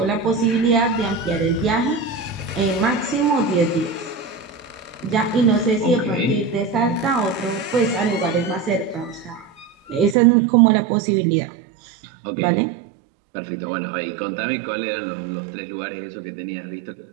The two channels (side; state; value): left; drops out; at 10.2 s